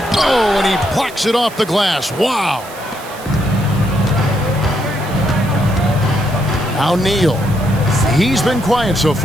Oh, and he plucks it off the glass. Wow. Now Neal. He's been quiet so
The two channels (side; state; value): right; noise; hiss, 18 dB below the sound